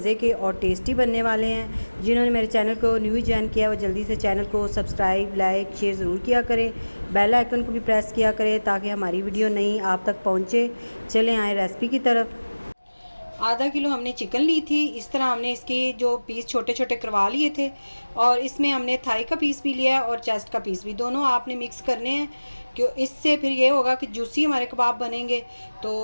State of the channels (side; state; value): both; inverted; correlation -1.00